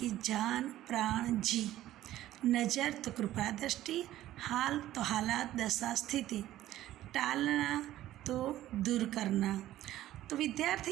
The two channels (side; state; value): left; quieter; 14.1 dB